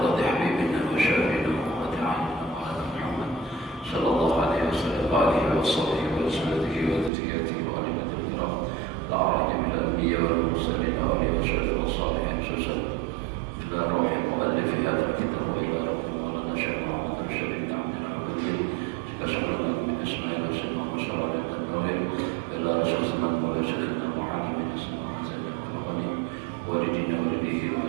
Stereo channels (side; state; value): left; drops out; at 7.1 s